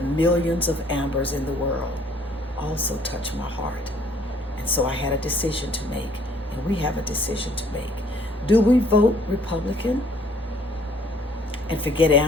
millions of Ambers in the world also touched my heart. And so I had a decision to make, and we have a decision to make. Do we vote Republican and forget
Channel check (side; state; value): both; normal; correlation 0.60